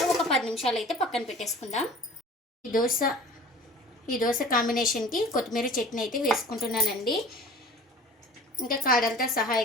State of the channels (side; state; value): both; normal; correlation 0.44